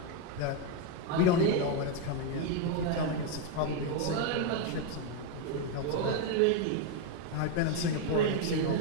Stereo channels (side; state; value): both; different; correlation 0.01